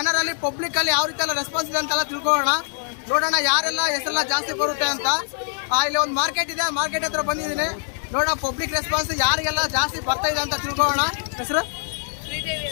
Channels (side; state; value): right; silent; 63 dB below the other